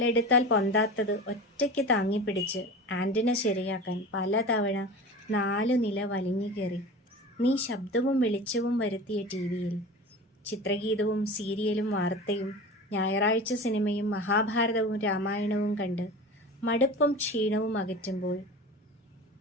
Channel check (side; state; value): both; normal; correlation 0.33